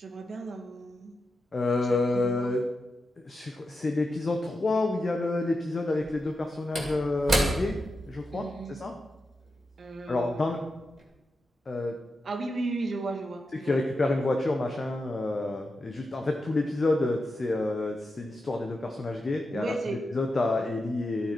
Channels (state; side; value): normal; both; correlation 0.88